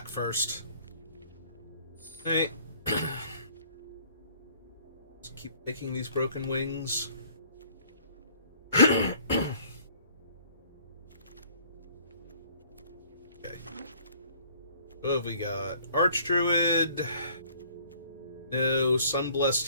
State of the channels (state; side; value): inverted; both; correlation -0.57